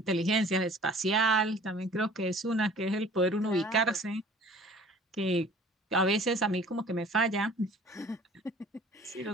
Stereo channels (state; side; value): normal; both; correlation 0.49